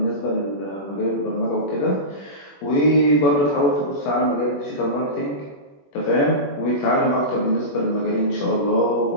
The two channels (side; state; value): right; late; 21 ms